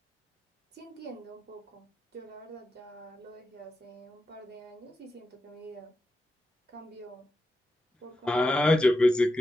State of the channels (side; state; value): both; normal; correlation 0.88